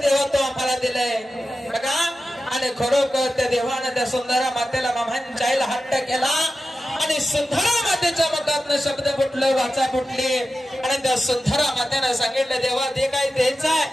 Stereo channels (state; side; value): normal; both; correlation 0.93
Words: तो आम्हाला दिलंय बघा। आणि खरोखर त्या देवाने त्या सुंदरा मातेला मामांच्या आईला हट्ट केला आणि सुंदरा मातेच्या मुखातनं शब्द फुटले, वाचा फुटली आणि त्या सुंदरा मातेने सांगितलं देवा ते काही द्यायचं आहे